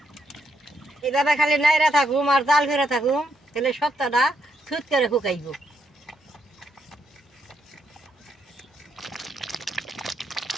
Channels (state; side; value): normal; both; correlation 0.77